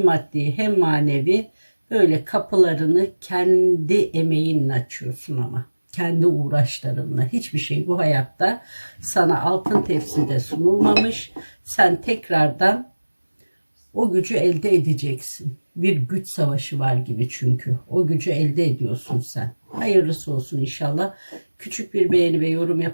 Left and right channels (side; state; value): both; inverted; correlation -1.00